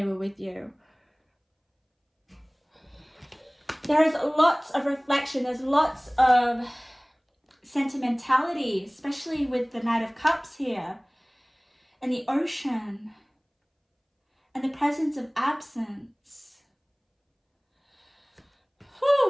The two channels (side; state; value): both; identical; correlation 1.00